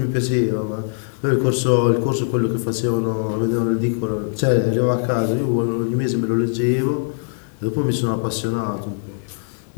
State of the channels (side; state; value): right; silent; 56 dB below the other